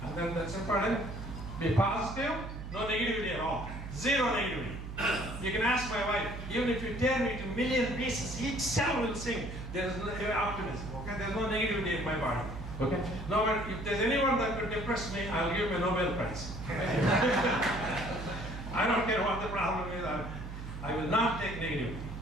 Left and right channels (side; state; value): right; noise; hum, 8 dB below the sound